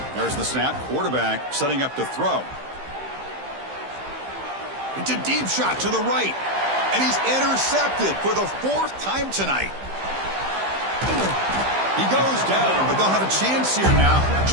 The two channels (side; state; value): left; late; 15 ms